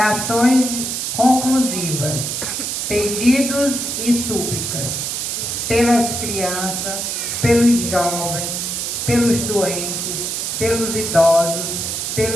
conclusivas. Pedidos e súplicas. Pelas crianças, pelos jovens, pelos doentes, pelos idosos,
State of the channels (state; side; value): noise; right; hiss, 2 dB below the sound